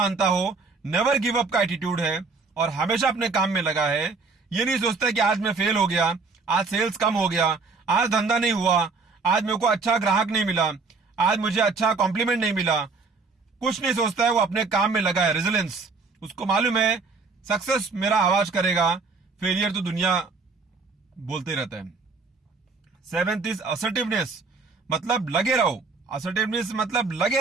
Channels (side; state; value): left; quieter; 4.3 dB